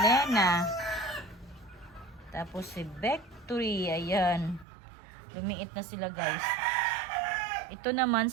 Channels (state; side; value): drops out; left; at 4.7 s